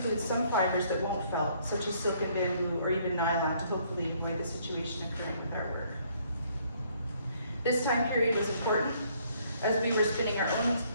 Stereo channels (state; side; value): inverted; both; correlation -0.65